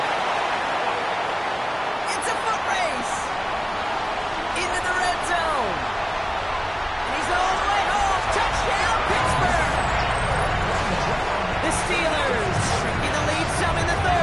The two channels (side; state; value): both; identical; correlation 1.00